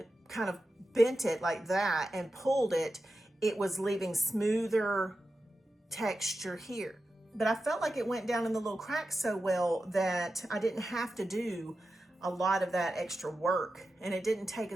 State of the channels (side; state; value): both; normal; correlation 0.91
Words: kind of bent it like that and pulled it, it was leaving smoother texture here. But I felt like it went down in the little cracks so well that I didn't have to do a lot of that extra work, and it didn't take